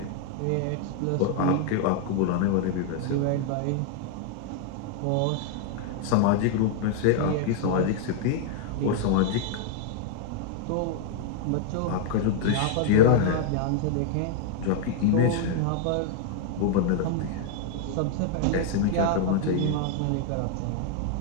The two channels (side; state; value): both; different; correlation 0.00